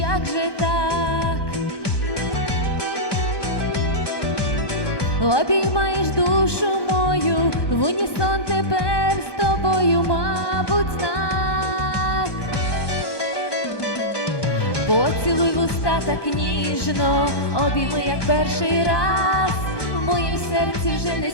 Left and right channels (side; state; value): right; late; 1.2 ms